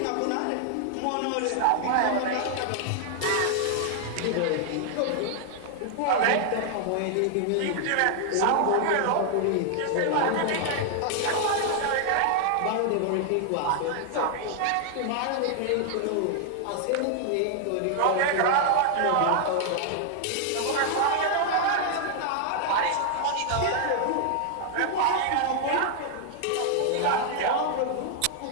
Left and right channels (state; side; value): different; both; correlation 0.00